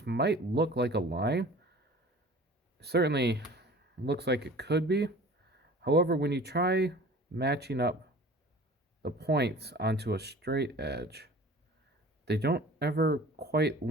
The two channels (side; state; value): both; normal; correlation 0.44